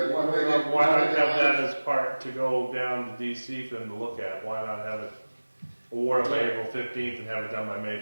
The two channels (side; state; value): both; inverted; correlation -1.00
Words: Why not have that as part to go down to DC for them to look at? Why not have it awarded by April 15th and have it done by May